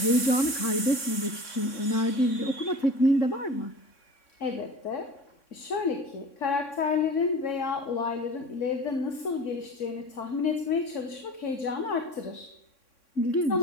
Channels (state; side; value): late; right; 3.6 ms